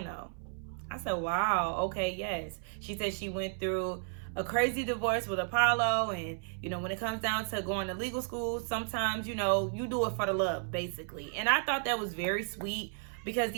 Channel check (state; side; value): silent; left; 56 dB below the other